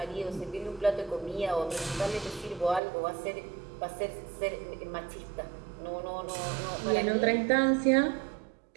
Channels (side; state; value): left; drops out; at 2.8 s